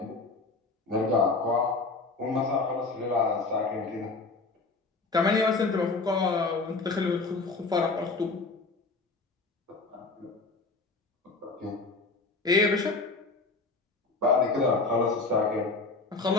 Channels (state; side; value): quieter; right; 3.8 dB